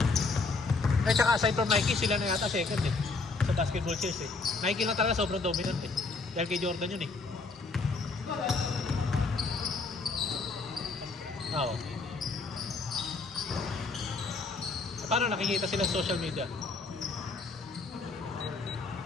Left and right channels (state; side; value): quieter; right; 3.9 dB